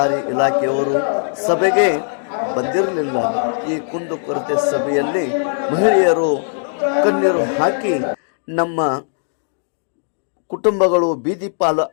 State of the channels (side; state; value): right; silent; digital silence